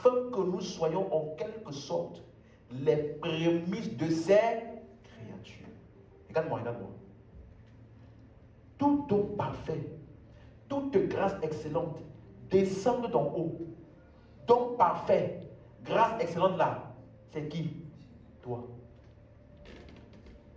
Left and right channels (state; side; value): identical; both; correlation 1.00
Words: que nous soyons en quelque sorte les prémices de ses créatures. Regarde-moi, regarde-moi. Tout don parfait, toute grâce excellente descend d'en haut. Don parfait, grâce excellente là, c'est qui? Toi.